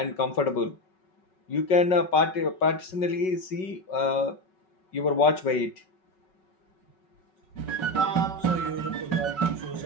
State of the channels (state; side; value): late; right; 5.4 ms